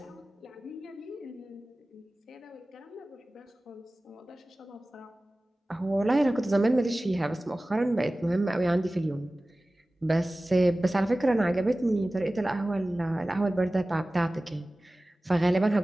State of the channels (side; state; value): both; normal; correlation 0.97